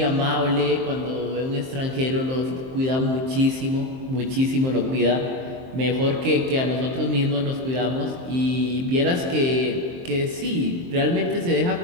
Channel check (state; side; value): late; left; 23 ms